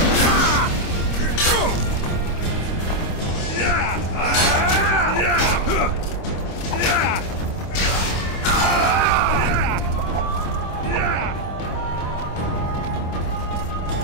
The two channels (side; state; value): right; late; 26 ms